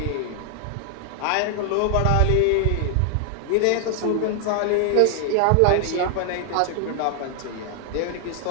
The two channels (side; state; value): both; different; correlation 0.00